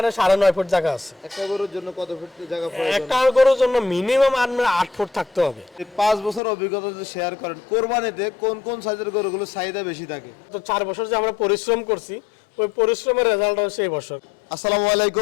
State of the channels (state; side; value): drops out; right; at 6.4 s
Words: 9.5 ফুট জায়গা আছে। একটা গরুর জন্য কত ফুট জায়গা প্রয়োজন? একটা গরুর জন্য মিনিমাম 8 ফুট থাকতে হবে। এই 5 বছর অভিজ্ঞতা যদি শেয়ার করেন, কোরবানিতে কোন কোন সাইজের গরুগুলো চাহিদা বেশি থাকে? তো 4 বছর যে আমরা পরিশ্রম করছি, ওই পরিশ্রমের রেজাল্ট হচ্ছে এই বছর। আসসালামু